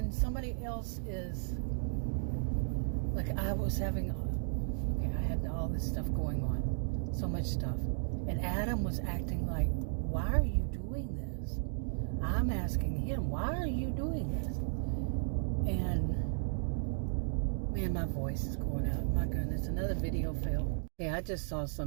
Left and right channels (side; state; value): left; silent; digital silence